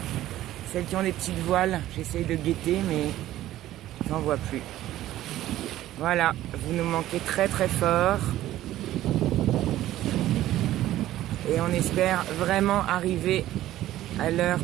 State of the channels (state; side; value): quieter; left; 14.2 dB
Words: des petites voiles. J'essaye de guetter, mais j'en vois plus. Voilà, vous nous manquez très très fort. Et on espère vraiment arriver à l'heure